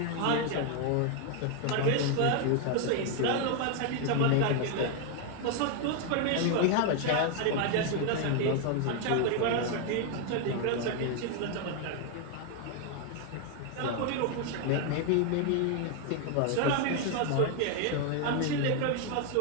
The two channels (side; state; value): both; different; correlation 0.01